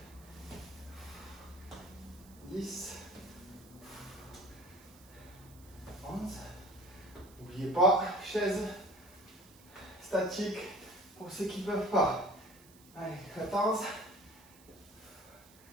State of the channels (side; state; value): right; noise; hiss, 24 dB below the sound